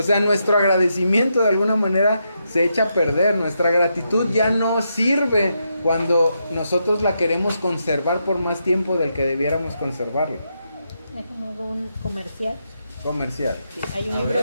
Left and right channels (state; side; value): inverted; both; correlation -0.82